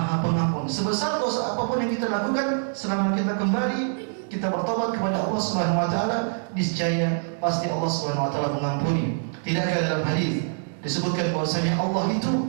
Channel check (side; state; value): left; silent; digital silence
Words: Pengampun. Sebesar dosa apapun yang kita lakukan, selama kita kembali, kita bertobat kepada Allah Subhanahu wa taala, niscaya pasti Allah Subhanahu wa taala mengampuni. Tidakkah dalam hadis disebutkan bahwasanya Allah